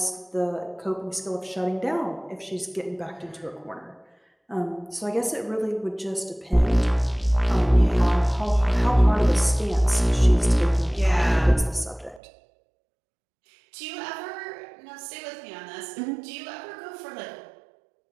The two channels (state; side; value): drops out; left; at 12.2 s